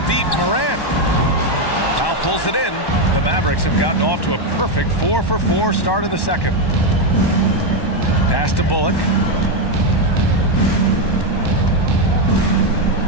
deep, Morant. Now pulls it in. The Mavericks have gotten off to a perfect 4-for-4 start in the second. Pass to Bullock.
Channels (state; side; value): late; right; 1.1 ms